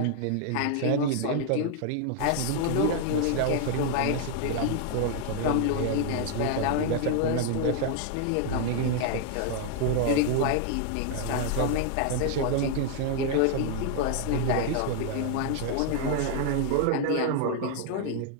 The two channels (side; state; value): both; different; correlation 0.00